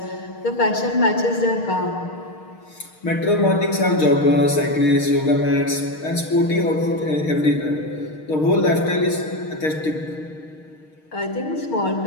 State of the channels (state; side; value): late; right; 6.5 ms